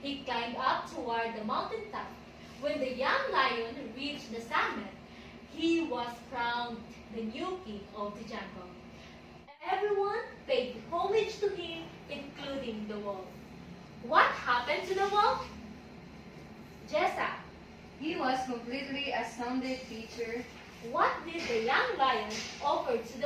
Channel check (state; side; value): identical; both; correlation 1.00